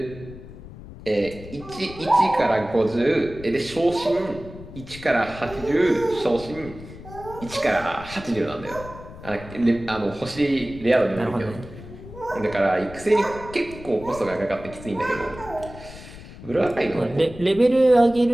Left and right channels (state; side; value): noise; left; rumble, 15 dB below the sound